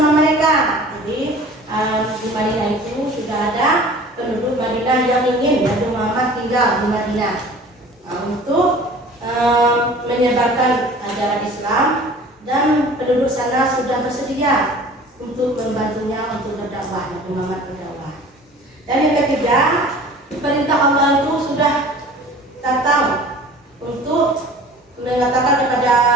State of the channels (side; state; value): both; normal; correlation 0.45